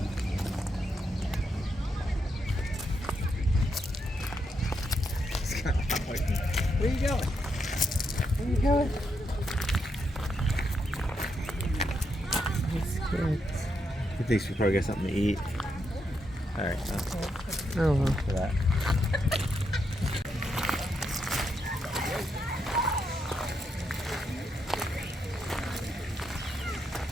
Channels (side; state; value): both; normal; correlation 0.81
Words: Where you going? Where you going? That's good. He thinks we probably got something to eat. Alright, Oh well. for that.